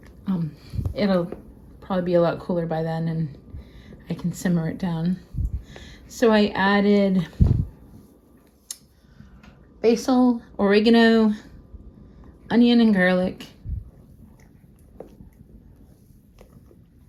it'll probably be a lot cooler by then and I can simmer it down. So I added basil, oregano, onion and garlic,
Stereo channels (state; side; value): identical; both; correlation 1.00